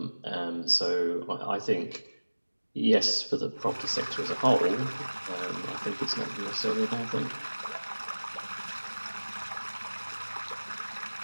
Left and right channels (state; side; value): inverted; both; correlation -1.00